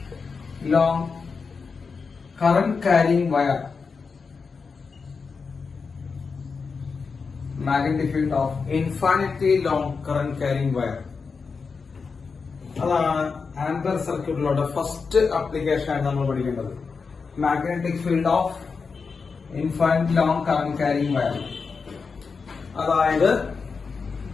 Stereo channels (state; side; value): quieter; right; 5.0 dB